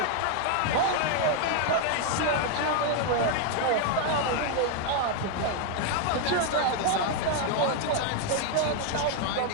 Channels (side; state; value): both; different; correlation 0.00